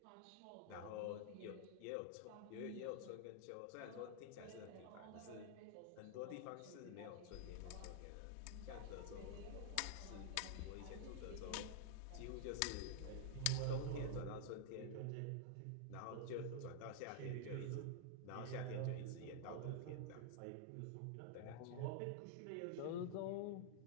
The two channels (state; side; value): different; both; correlation -0.01